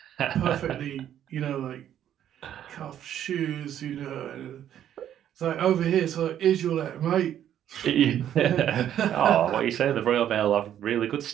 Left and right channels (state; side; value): quieter; left; 10.6 dB